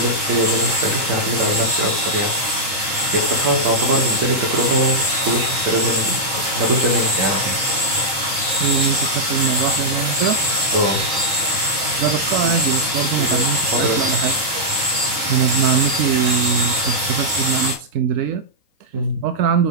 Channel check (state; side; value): late; left; 3.8 ms